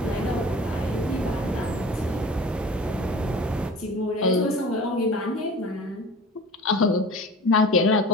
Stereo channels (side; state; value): both; normal; correlation 0.40